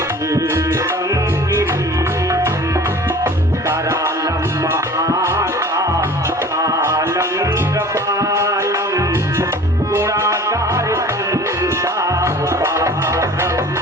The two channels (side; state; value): both; normal; correlation 0.44